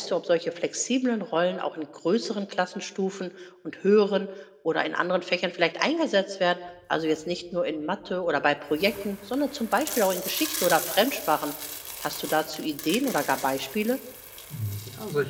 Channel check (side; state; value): both; identical; correlation 1.00